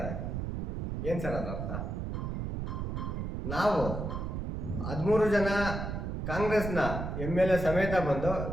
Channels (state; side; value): noise; right; rumble, 3 dB below the sound